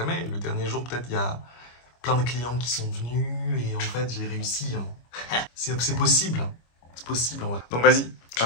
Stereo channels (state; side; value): late; right; 25 ms